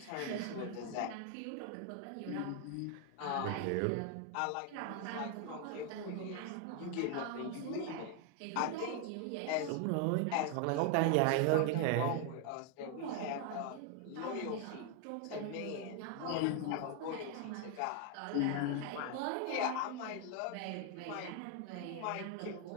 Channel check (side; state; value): both; different; correlation 0.01